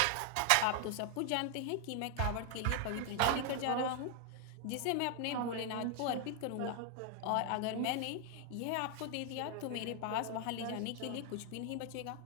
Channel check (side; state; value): both; different; correlation 0.00